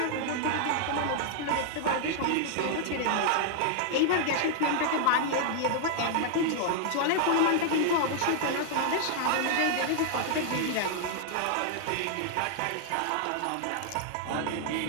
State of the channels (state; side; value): different; both; correlation 0.00